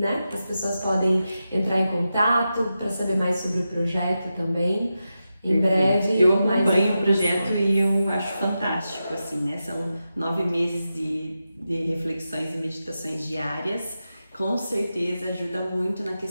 as pessoas podem entrar em contato para saber mais sobre o projeto também. Em breve. Eu acompanho o projeto e eu acho fantástico, assim, né? São 9 meses de reflexões e meditações diárias. Com certeza ajuda muito na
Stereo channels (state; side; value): inverted; both; correlation -0.90